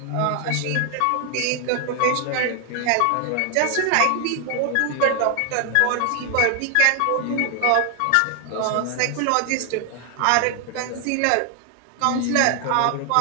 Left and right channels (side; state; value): both; different; correlation 0.00